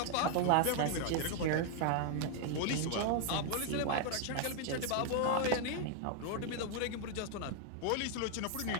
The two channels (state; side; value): different; both; correlation 0.00